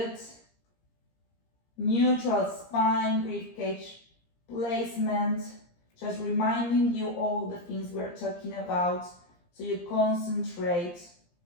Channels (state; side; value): late; right; 17 ms